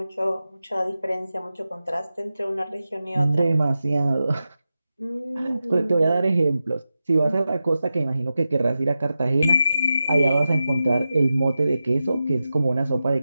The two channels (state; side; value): inverted; both; correlation -0.92